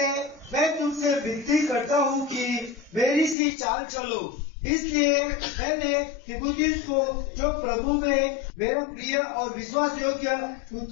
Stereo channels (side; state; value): right; drops out; at 3.4 s